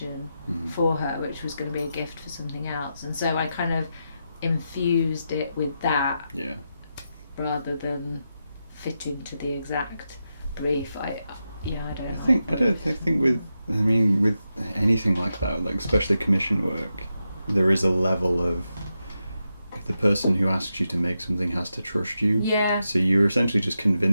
for her, which was going to be a gift for something else, and so I kind of infused it with that rather than fitting to the exact brief. I think with anything like that, like especially commission work, there is a level of the person who asks you to make something has to trust you. Yeah. So you're essentially just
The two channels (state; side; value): inverted; both; correlation -0.87